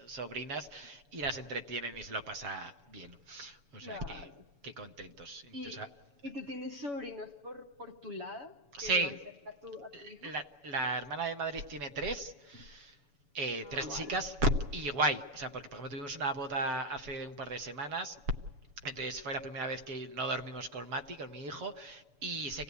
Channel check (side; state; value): left; late; 7.0 ms